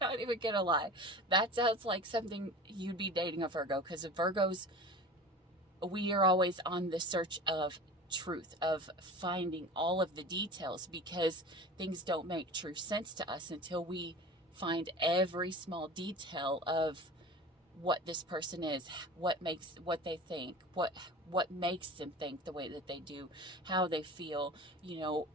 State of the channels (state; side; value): normal; both; correlation 0.36